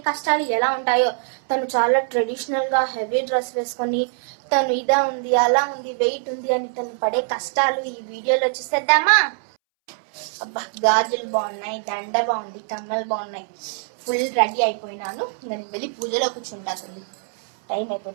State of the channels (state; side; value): silent; left; 64 dB below the other